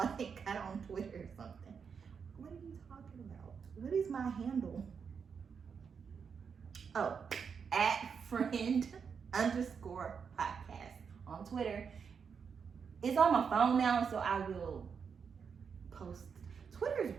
got on Twitter or something. What are you talking about? What is my handle? Oh, @friend_podcast on Twitter. It's on my phone now, so I will post. Twitter's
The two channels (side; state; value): left; quieter; 6.3 dB